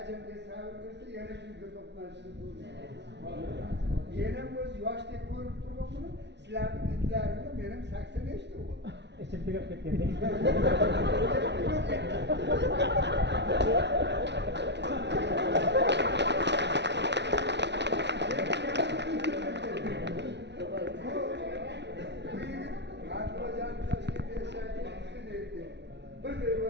sabr bersa yana shunga to'qnashishni to'g'ri. Mening o'z yoshdek ko'rib turgan buni sizlarning itlaringlar mening 80 yoshda bo'ldi. Ichim tugab ketgandek.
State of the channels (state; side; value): late; left; 0.50 ms